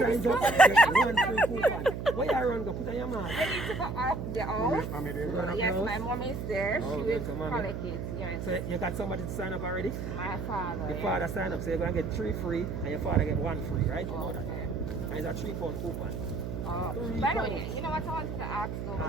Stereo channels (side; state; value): right; noise; hum, 5 dB below the sound